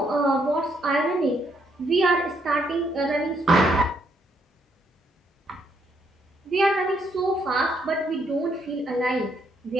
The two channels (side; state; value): both; normal; correlation 0.73